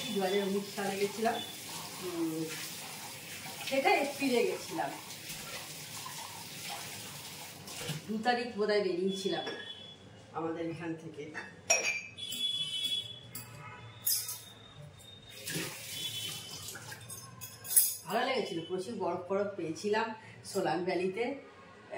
2019 সালে গেছিলাম। সেটা এপ্রিলে গেছিলাম, 2 তারিখ বোধহয় বেরিয়েছিলাম আমাদের এখান থেকে। ভালো লেগেছিল, প্রচুর বরফ বরফ পেয়েছিলাম সোলাং ভ্যালিতে।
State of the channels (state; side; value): identical; both; correlation 1.00